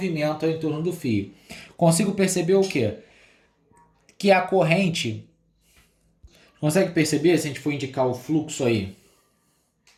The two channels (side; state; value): both; identical; correlation 1.00